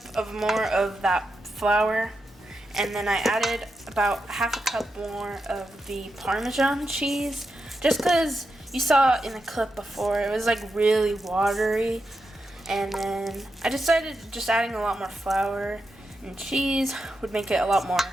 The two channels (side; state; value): both; normal; correlation 0.87